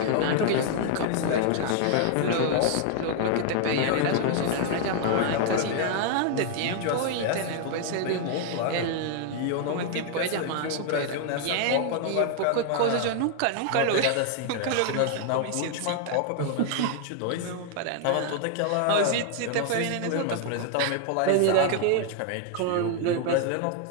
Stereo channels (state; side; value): different; both; correlation 0.00